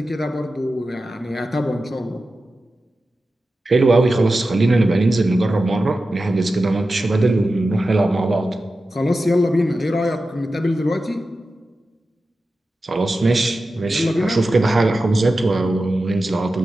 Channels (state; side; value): normal; both; correlation 0.93